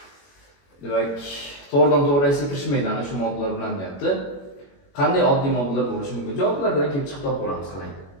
Demak, to'g'ridan-to'g'ri reaksiyaga kirishmaydi ana shu moddalar bilan deyapti. qanday oddiy moddalar bo'lishi mumkin? Javoblardan kelib chiqib topib olamiz qarang.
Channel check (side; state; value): right; late; 21 ms